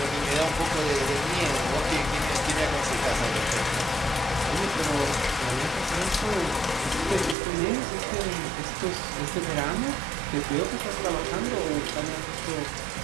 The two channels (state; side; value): drops out; left; at 7.4 s